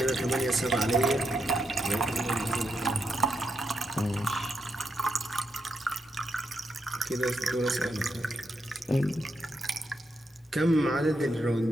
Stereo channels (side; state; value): both; normal; correlation 0.82